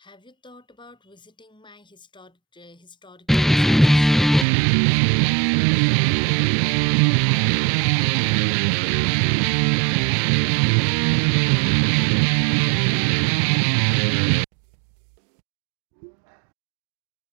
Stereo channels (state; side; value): drops out; left; at 4.5 s